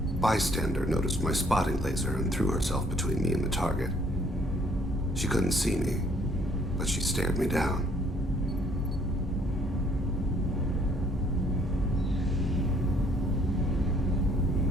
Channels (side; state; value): both; normal; correlation 0.63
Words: bystander noticed my spotting laser and threw herself between me and the target. She couldn't see me, but she stared me down.